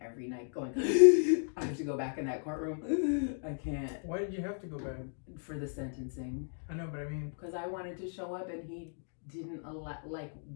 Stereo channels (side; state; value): right; silent; digital silence